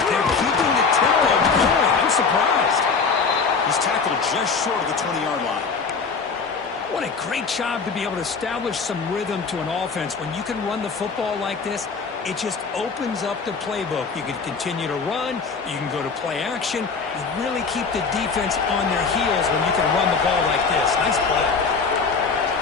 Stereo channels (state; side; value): quieter; right; 5.0 dB